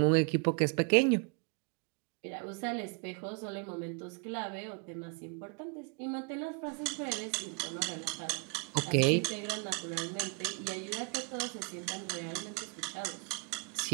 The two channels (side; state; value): left; quieter; 35.1 dB